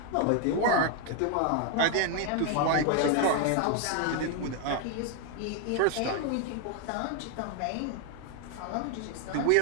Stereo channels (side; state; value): both; different; correlation 0.00